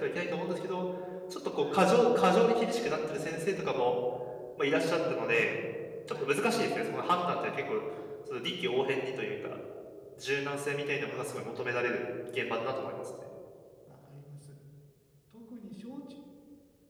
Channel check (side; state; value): both; identical; correlation 1.00